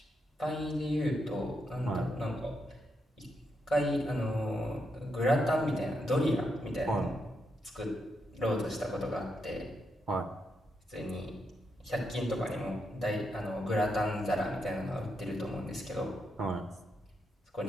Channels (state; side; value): normal; both; correlation 0.82